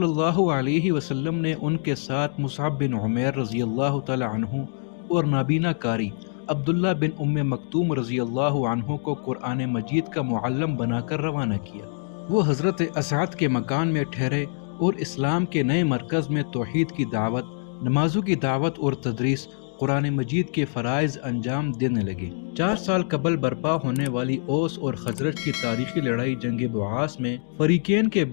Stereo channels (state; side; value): silent; right; digital silence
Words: اللہ علیہ وسلم نے ان کے ساتھ مصعب بن عمیر رضی اللہ تعالی عنہ اور نابینا کاری، عبداللہ بن ام مکتوم رضی اللہ عنہ کو قرآن مجید کا معلم بنا کر روانہ کیا۔ وہ حضرت اسعد کے مکان میں ٹھہرے اور اسلام کے نئے مرکز میں توحید کی دعوت، نمازوں کی دعوت اور تدریس، قرآن مجید کے فرائض انجام دینے لگے۔ 4 سال قبل برپا ہونے والی اوس اور خزرج کی تاریخی لڑائی جنگ بعاث میں فریقین کے